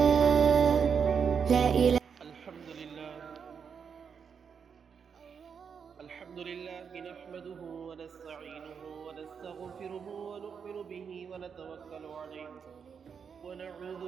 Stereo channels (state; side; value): quieter; left; 6.6 dB